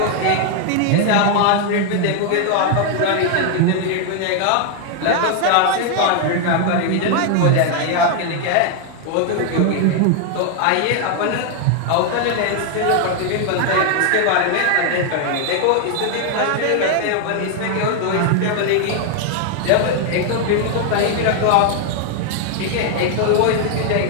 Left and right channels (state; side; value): different; both; correlation 0.00